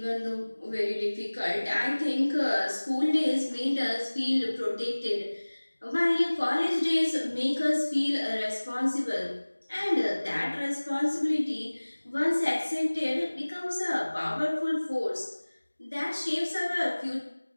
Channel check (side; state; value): both; inverted; correlation -1.00